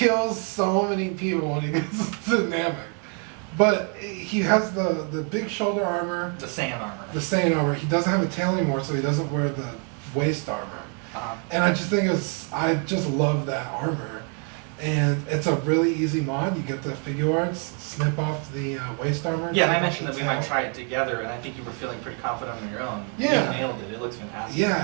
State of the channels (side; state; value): left; quieter; 38.9 dB